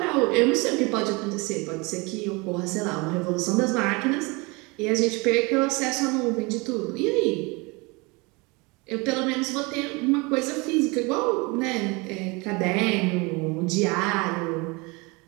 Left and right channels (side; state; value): left; quieter; 26.9 dB